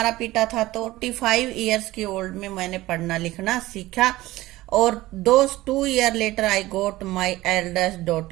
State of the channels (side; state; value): left; quieter; 17.7 dB